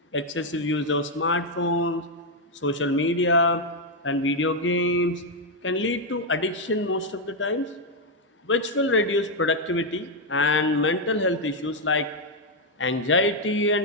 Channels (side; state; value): both; normal; correlation 0.01